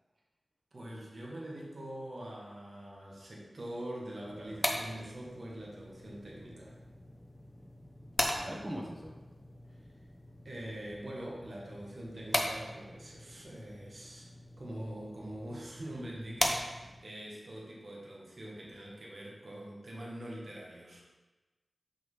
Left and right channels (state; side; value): normal; both; correlation 0.97